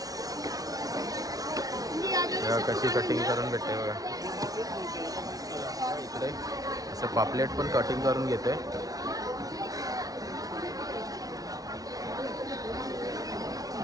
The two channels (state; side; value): late; left; 0.18 ms